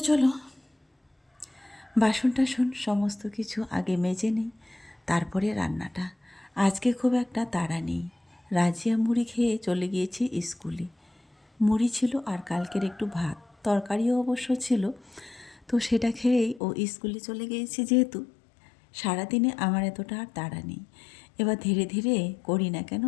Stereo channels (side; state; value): right; drops out; at 16.6 s